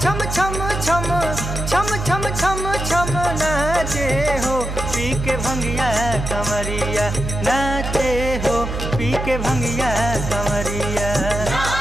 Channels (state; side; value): noise; right; hum, 5 dB below the sound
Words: छम छम छम छम छम छम छम नाचे हो पी के भंगिया कमरिया नाचे हो पी के भंगिया कमरिया